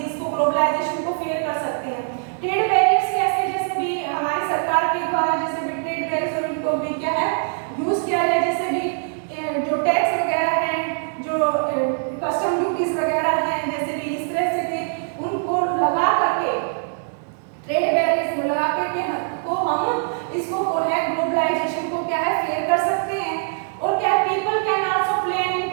इसको ग्लोबलाइजेशन को फेयर कर सकते हैं। ट्रेड बैरियर्स कैसे? जैसे भी हमारी सरकार के द्वारा जैसे भी ट्रेड बैरियर्स और इनको भी क्या है यूज किया जाए, जैसे भी जो टैक्स वगैरह हैं, जो कस्टम ड्यूटीज वगैरह हैं, जैसे भी इस तरह से भी उनको लगा करके ट्रेड बैरियर्स को लगा करके को हम इसको है ग्लोबलाइजेशन को क्या है फेयर कर सकते हैं। और क्या people can also play an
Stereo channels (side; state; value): left; silent; digital silence